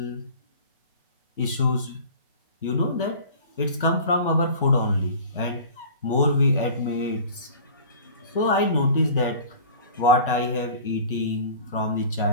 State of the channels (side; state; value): both; inverted; correlation -0.41